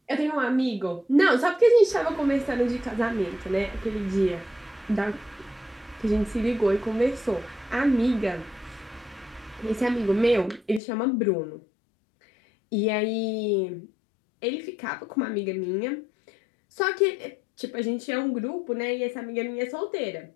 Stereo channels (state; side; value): drops out; right; at 10.8 s